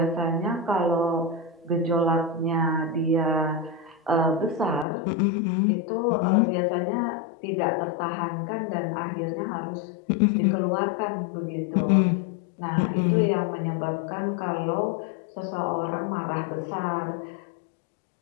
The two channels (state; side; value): drops out; right; at 4.9 s